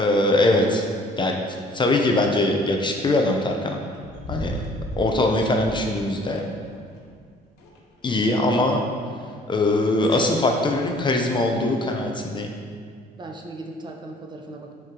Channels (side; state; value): both; normal; correlation 0.56